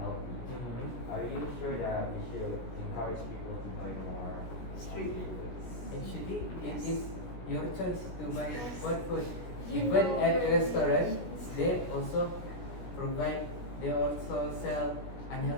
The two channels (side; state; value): right; late; 16 ms